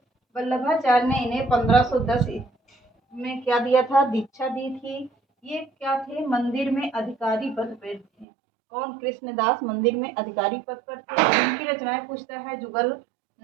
वल्लभाचार्य ने इन्हें 1510 में क्या दिया था? दीक्षा दी थी। ये क्या थे? मंदिर में अधिकारी पद पर थे। कौन? कृष्णदास मंदिर में अधिकारी पद पर थे। इनकी रचनाएं पूछता है। जुगल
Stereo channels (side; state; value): left; drops out; at 8.2 s